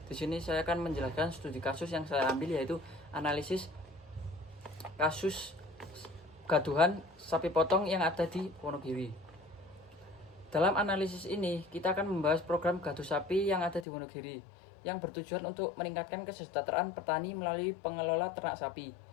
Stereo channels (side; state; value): right; drops out; at 13.9 s